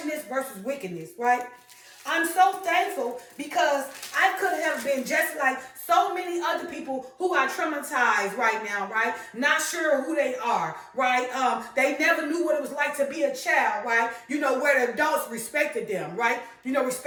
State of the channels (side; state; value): both; identical; correlation 1.00